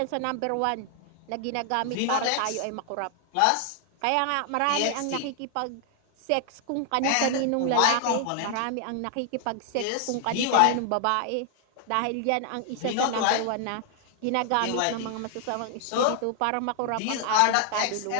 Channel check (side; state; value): both; different; correlation 0.00